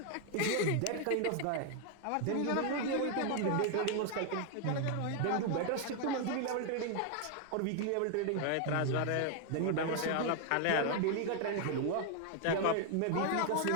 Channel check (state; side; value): different; both; correlation 0.00